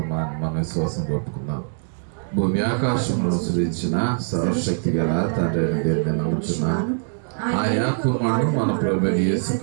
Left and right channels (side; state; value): left; silent; 64 dB below the other